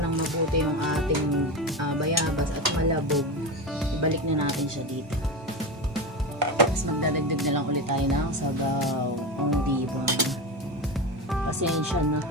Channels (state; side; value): normal; both; correlation 0.21